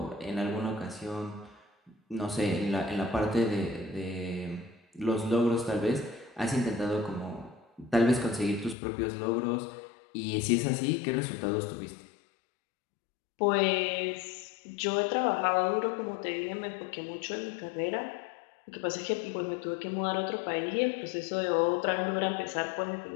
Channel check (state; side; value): drops out; right; at 8.8 s